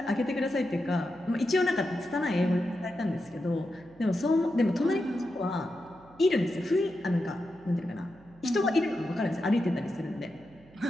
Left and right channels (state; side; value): noise; right; hum, 25 dB below the sound